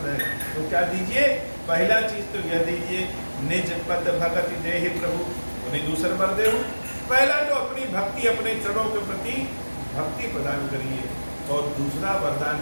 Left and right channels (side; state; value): both; inverted; correlation -1.00